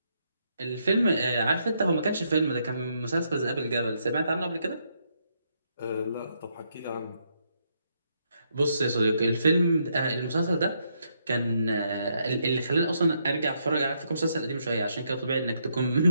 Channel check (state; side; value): inverted; both; correlation -0.76